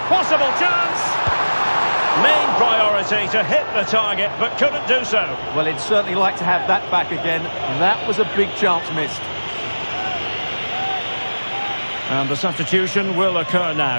Possible chance. Main priority to hit the target, but couldn't do so. Well, he'd certainly like to have that back again. That was a big chance missed. And the substitution will occur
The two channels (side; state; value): both; inverted; correlation -1.00